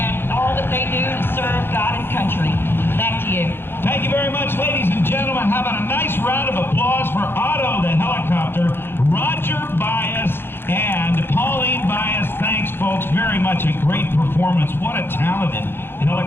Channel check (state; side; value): late; right; 0.11 ms